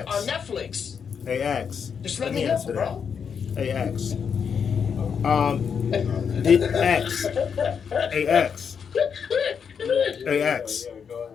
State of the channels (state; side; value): quieter; right; 6.8 dB